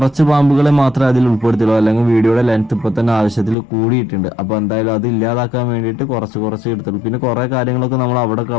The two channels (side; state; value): right; drops out; at 3.6 s